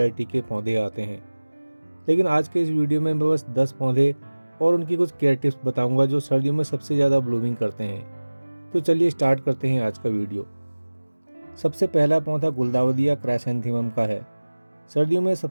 के पौधे आते हैं। लेकिन आज के इस वीडियो में मैं बस 10 पौधे और उनकी कुछ केयर टिप्स बताऊँगा जो सर्दियों में सबसे ज़्यादा ब्लूमिंग करते हैं। तो चलिए स्टार्ट करते हैं आज का वीडियो। सबसे पहला पौधा गुलदाउदी या क्राइसैंथेमम का है। सर्दियों में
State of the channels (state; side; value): inverted; both; correlation -1.00